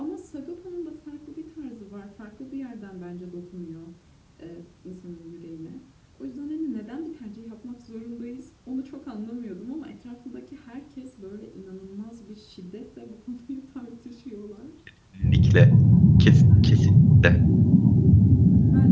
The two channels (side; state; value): both; identical; correlation 1.00